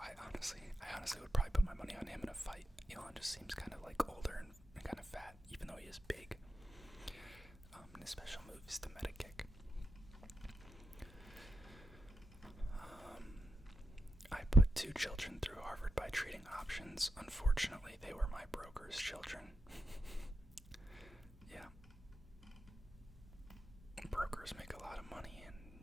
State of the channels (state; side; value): normal; both; correlation 0.85